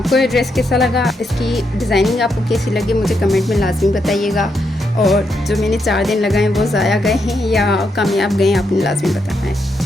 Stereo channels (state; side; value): normal; both; correlation 0.80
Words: ये ड्रेस कैसा लगा, इसकी डिज़ाइनिंग आपको कैसी लगी, मुझे कमेंट में लाजमी बताइएगा। और जो मैंने 4 दिन लगाए वो ज़ाया गए हैं या कामयाब गए हैं, आपने लाजमी बताना है,